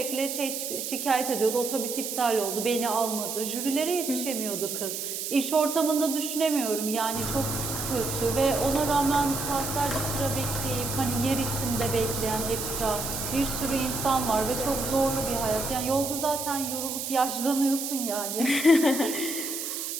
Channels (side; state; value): right; noise; hiss, 4 dB below the sound